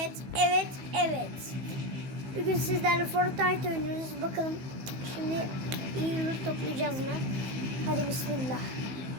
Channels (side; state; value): left; late; 15 ms